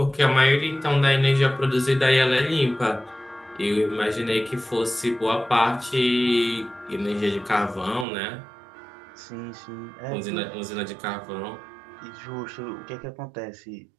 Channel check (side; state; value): left; drops out; at 8.1 s